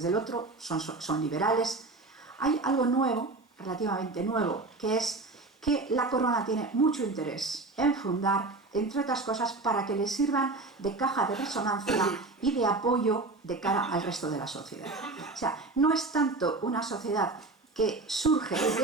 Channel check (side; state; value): left; quieter; 3.4 dB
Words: del otro, son liberales. Hay algo nuevo, relativamente nuevo, que es que la corona tiene mucho interés en fundar, entre otras cosas, para que le sirvan de caja de resonancia y de apoyo de cara al resto de la sociedad. O sea, no es tanto una sociedad que surge